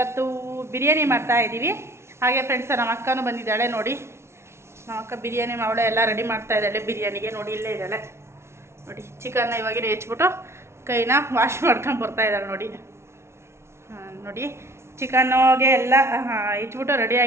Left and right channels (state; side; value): late; left; 0.13 ms